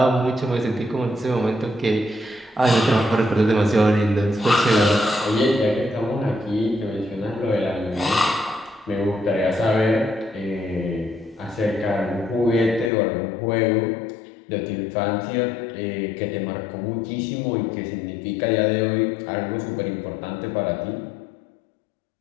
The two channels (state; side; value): drops out; right; at 12.9 s